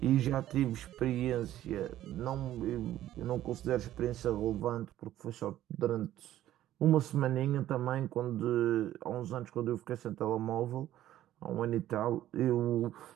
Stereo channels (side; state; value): left; quieter; 13.1 dB